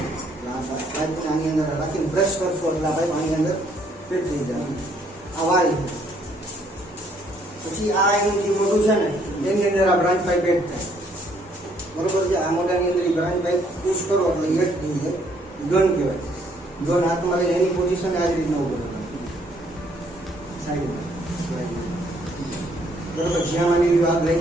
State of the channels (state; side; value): normal; both; correlation 0.66